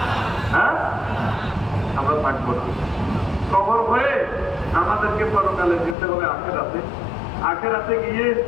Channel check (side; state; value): right; drops out; at 6.0 s